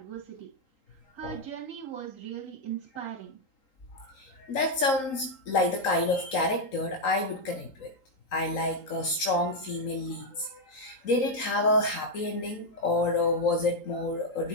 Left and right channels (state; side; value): late; right; 3.8 ms